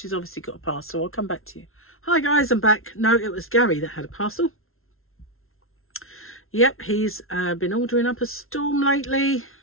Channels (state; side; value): late; right; 0.62 ms